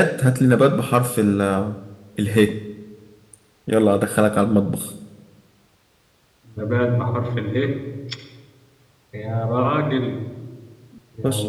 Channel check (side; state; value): both; identical; correlation 1.00